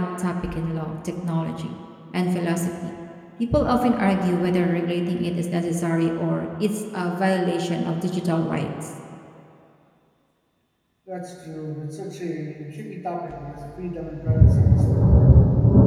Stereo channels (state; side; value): identical; both; correlation 1.00